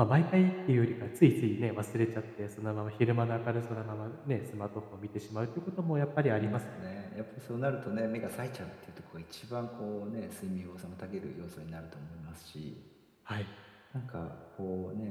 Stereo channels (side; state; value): both; identical; correlation 1.00